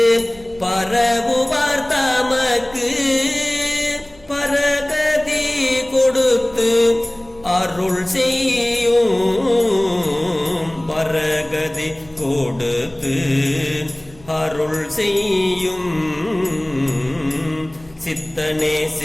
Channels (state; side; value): noise; right; rumble, 25 dB below the sound